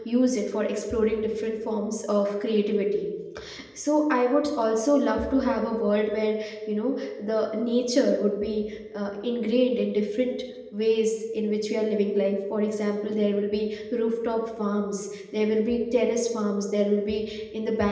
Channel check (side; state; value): both; identical; correlation 1.00